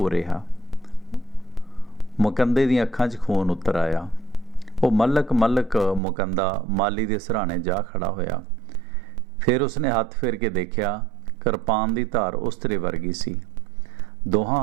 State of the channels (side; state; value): left; drops out; at 6.0 s